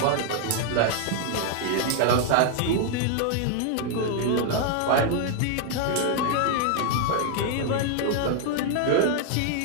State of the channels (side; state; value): both; different; correlation 0.00